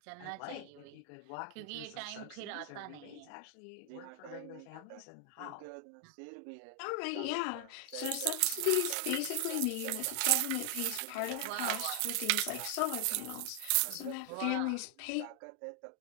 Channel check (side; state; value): both; different; correlation 0.00